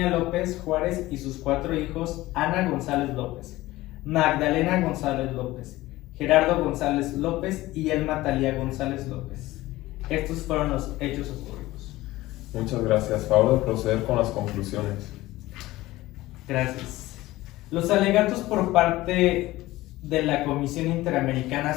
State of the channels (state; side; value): quieter; right; 17.8 dB